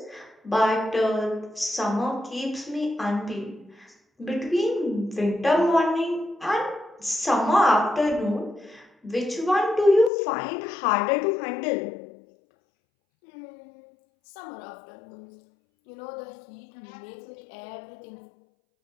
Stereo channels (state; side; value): drops out; right; at 10.1 s